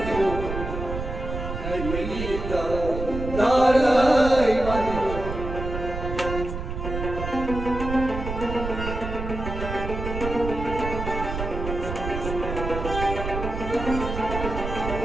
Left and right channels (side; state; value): right; noise; rumble, 6 dB below the sound